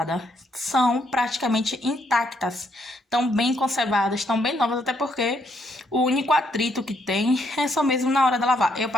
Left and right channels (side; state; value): both; normal; correlation 0.73